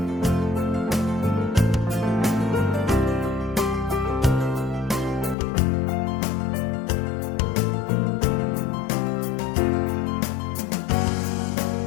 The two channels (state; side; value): drops out; right; at 5.4 s